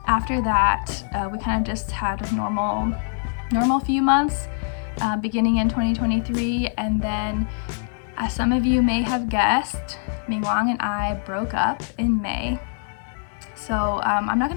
After that, we kind of just had a normal few months, beginning in 2023, and then, as some of you may have guessed, Mingwang and I broke up in May. So I'm not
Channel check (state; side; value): silent; right; 63 dB below the other